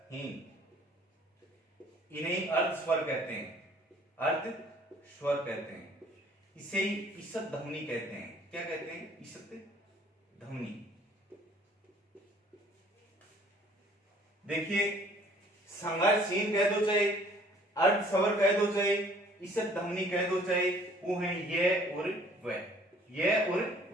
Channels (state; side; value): normal; both; correlation 0.56